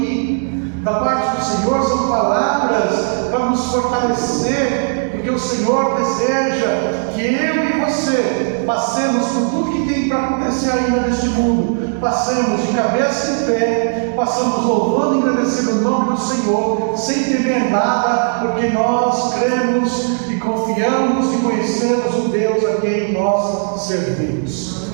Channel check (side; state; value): left; silent; 68 dB below the other